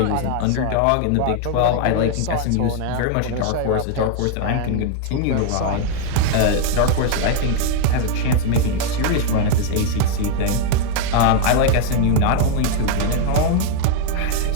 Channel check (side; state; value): both; different; correlation 0.00